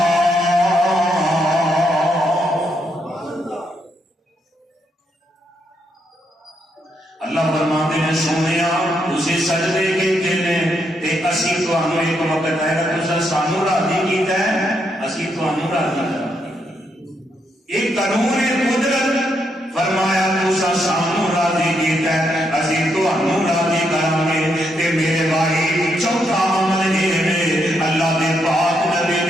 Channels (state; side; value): normal; both; correlation 0.78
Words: اللہ فرماتے ہیں سونیا تسی سجدے کیتے نے تے اسی تانوں ایک وقت آئے گا تساں سانوں راضی کیتا ہے اسی تانوں راضی کراں ایک قانون قدرت فرمایا تساں سانوں راضی کیتا ہے اسی تانوں راضی کراں گے تے میرے بھائی چوتھا عمل یہ ہے اللہ دے پاک نبی